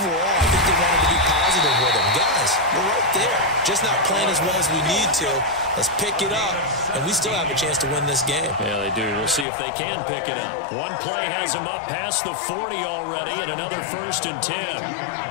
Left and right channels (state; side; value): drops out; right; at 9.5 s